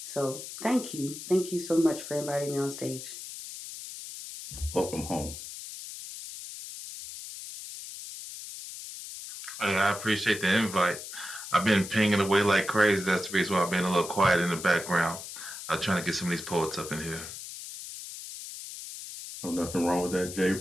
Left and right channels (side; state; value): left; noise; hiss, 10 dB below the sound